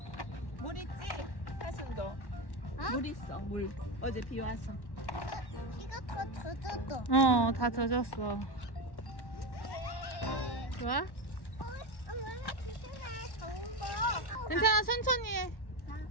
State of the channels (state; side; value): late; right; 1.1 ms